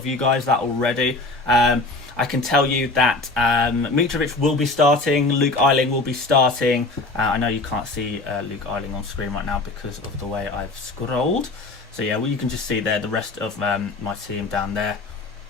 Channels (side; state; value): right; quieter; 3.2 dB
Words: you guys that already. I can tell you that Mitrovic will be starting, Luke Ayling will be starting. I know you can't see Luke Ayling on screen right now because of the way I've scrolled. So yeah, well, you can just see there the rest of my team down there.